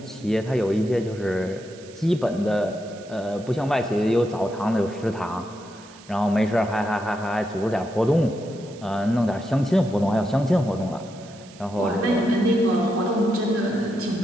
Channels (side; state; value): right; noise; hiss, 22 dB below the sound